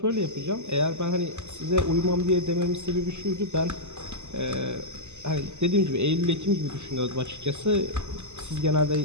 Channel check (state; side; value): late; left; 0.83 ms